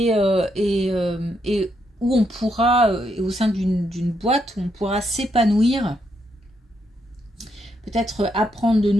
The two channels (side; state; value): both; normal; correlation 0.78